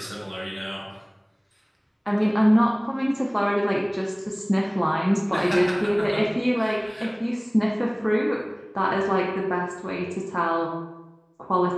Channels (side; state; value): both; identical; correlation 1.00